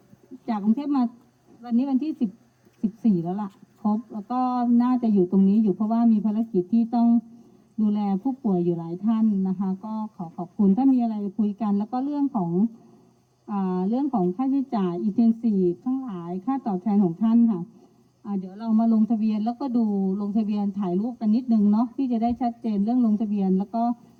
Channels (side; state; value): both; identical; correlation 1.00